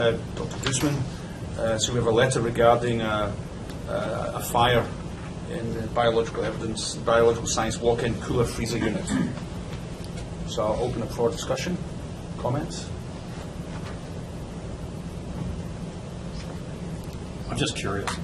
Guzman. So we have a letter regarding a fire in the biological science walk-in cooler freezer unit. So I'll open up for discussion, comments. I'm just curious.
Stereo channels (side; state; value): both; identical; correlation 1.00